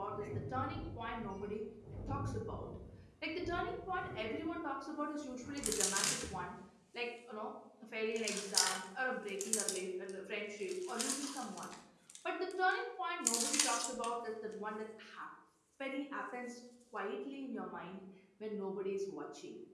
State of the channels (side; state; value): both; identical; correlation 1.00